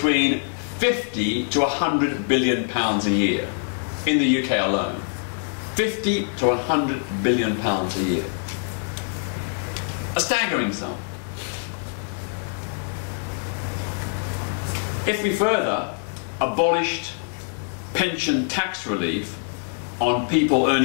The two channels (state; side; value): silent; right; 58 dB below the other